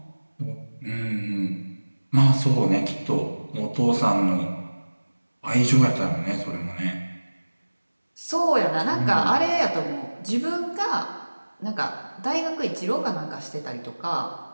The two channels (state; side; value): inverted; both; correlation -1.00